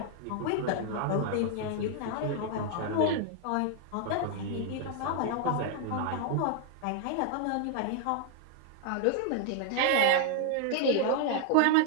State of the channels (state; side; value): different; both; correlation 0.00